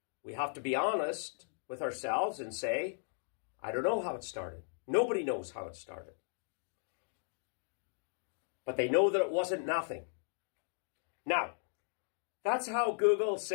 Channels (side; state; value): right; silent; digital silence